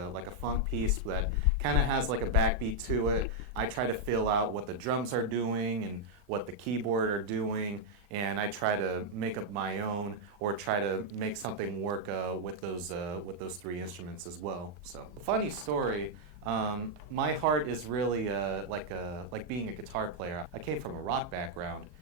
funk piece that kind of has like a backbeat to it, I try to feel out what the drums are doing and what the keyboard are doing, and I try to make up my own or try to make something work with those three instruments as well. So, funny story. My heart is really like being a guitar player. I came from a rock background.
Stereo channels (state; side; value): late; left; 34 ms